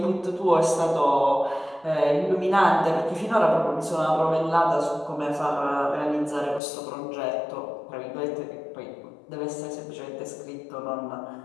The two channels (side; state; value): right; drops out; at 6.6 s